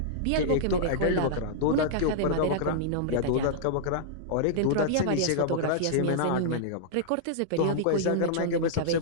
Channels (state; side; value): different; both; correlation -0.02